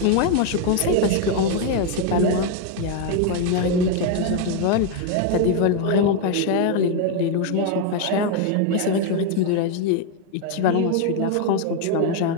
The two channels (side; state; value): both; different; correlation 0.01